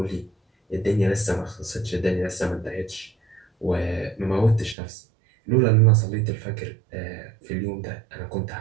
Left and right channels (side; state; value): left; drops out; at 4.8 s